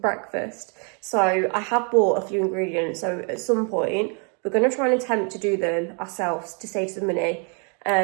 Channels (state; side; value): quieter; left; 37.5 dB